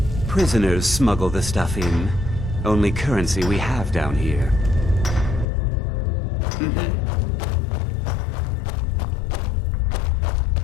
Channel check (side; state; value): right; drops out; at 5.5 s